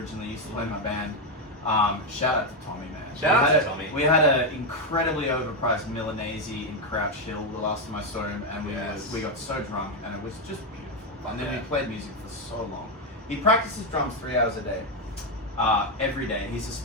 used to play in my band. Shout out to Tommy, man. Shout out to Tommy. We had an incredibly overpriced Milanese in Crouch Hill the last time I saw him, and we got so drunk, and it was just beautiful. And then we played music for so long. He practices drums 3 hours a day, every day. He's a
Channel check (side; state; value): both; normal; correlation 0.05